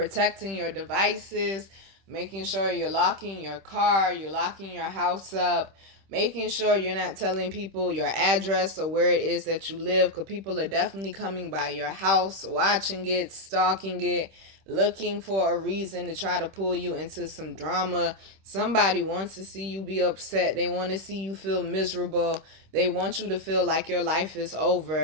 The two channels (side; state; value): left; late; 26 ms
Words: your devices, making sure you're locking your car, you're locking your house up, making sure you're not telling people your address or where it is that you live, because people are definitely coming by your house, watching it, stalking it, looking for a reason to try to pull you into some drama. Somebody wants to see you be upset. They want to see you feel miserable. They want you to feel like your life is